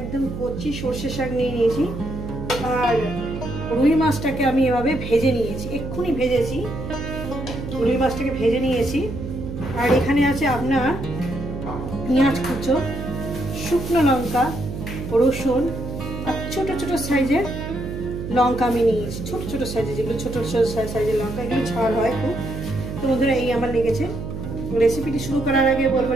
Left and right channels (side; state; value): right; noise; hum, 7 dB below the sound